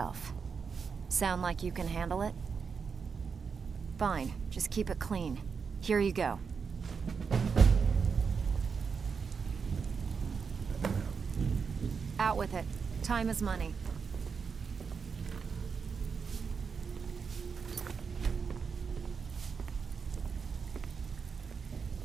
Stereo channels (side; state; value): left; quieter; 5.7 dB